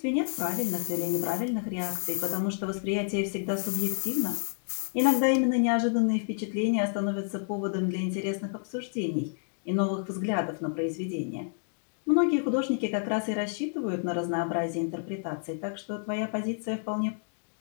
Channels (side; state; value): right; silent; digital silence